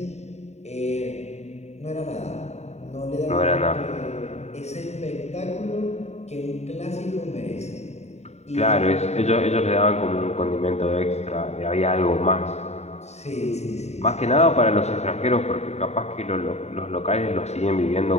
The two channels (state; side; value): late; right; 0.32 ms